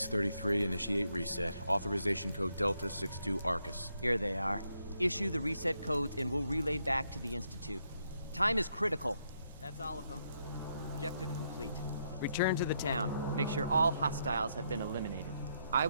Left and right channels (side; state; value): both; inverted; correlation -0.77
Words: initiate reset. Authorization code Delta 62 Arcus. Here they are. Issue the reset codes and we'll relay back to the Institute. Time is critical. That's all of them. Objective complete. Return to the town. Make sure all hostiles have been eliminated. I